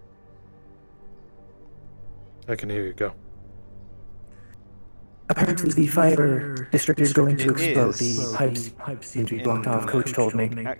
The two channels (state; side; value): inverted; both; correlation -1.00